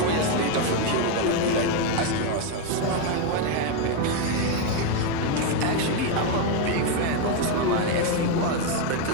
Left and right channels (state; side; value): different; both; correlation 0.02